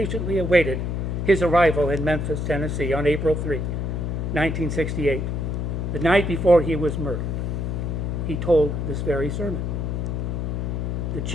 awaited his arrival in Memphis, Tennessee on April 3, 1968, the night before he was murdered, he told this very sermon. The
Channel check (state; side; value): noise; left; hum, 1 dB below the sound